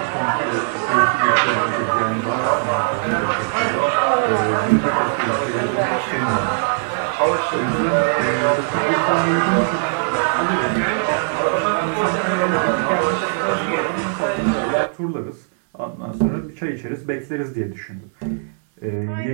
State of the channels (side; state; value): left; silent; 66 dB below the other